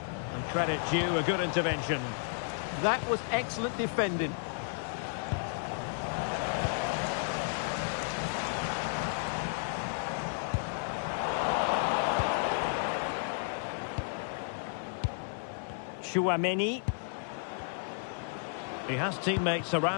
And credit due, a good intervention. That was excellent defending. Chouameni. He has teammates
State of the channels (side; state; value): right; silent; digital silence